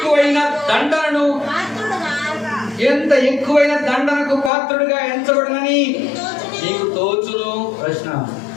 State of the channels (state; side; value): drops out; right; at 4.5 s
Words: ఎక్కువైన దండనకు పాత్రుడుగా ఎంచబడునని నీకు తోచును. ప్రశ్న